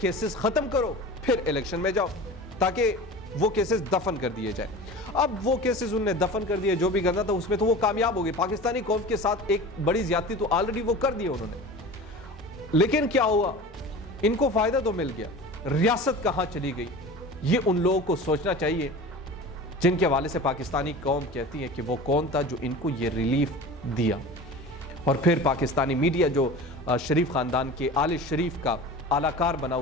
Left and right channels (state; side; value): normal; both; correlation 0.35